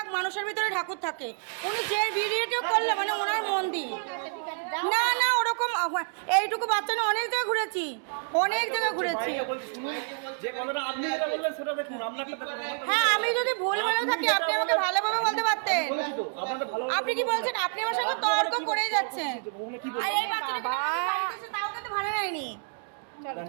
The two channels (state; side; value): silent; left; 59 dB below the other